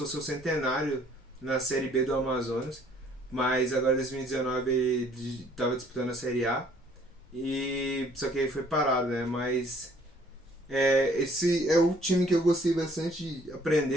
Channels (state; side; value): normal; both; correlation 0.60